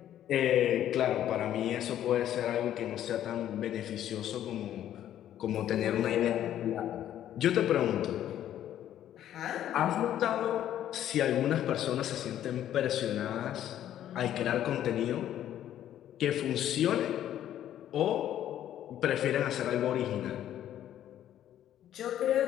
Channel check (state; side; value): quieter; right; 11.4 dB